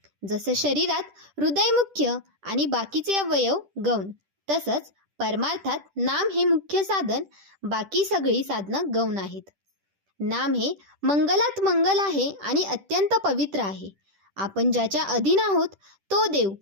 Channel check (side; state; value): left; late; 10 ms